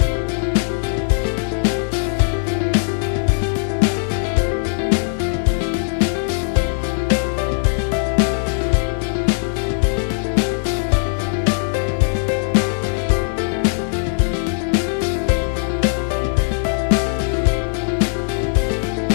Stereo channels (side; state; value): right; silent; 66 dB below the other